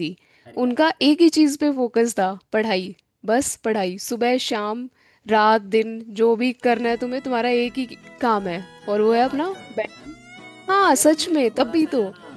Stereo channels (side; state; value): both; identical; correlation 1.00